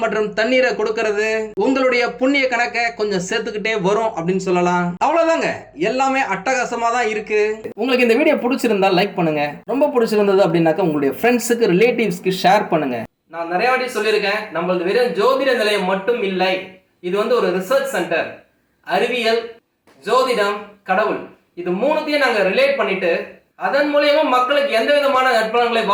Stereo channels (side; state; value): both; identical; correlation 1.00